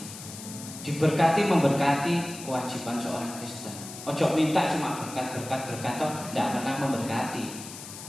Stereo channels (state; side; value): noise; left; hiss, 12 dB below the sound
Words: Diberkati memberkati kewajiban seorang Kristen. Ojo minta cuma berkat toh tidak pernah memberkati.